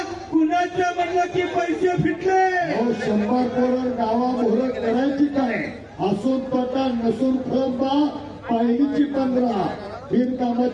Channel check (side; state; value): both; identical; correlation 1.00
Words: कुणाचं म्हणलं की पैसे फिटले. 100 करोड गावा मोहर करायची काय. असून तोटा नसून फळंबा पहिलीची 15